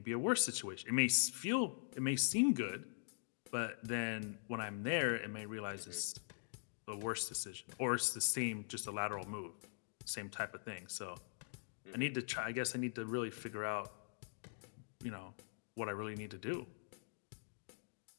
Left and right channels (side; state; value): right; silent; digital silence